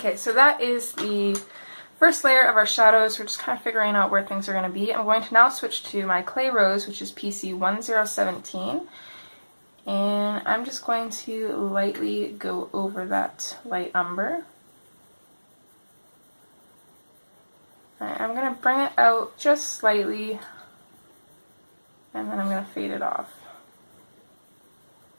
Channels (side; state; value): both; inverted; correlation -1.00